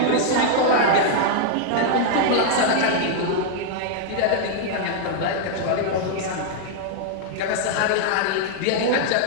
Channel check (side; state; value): both; different; correlation 0.00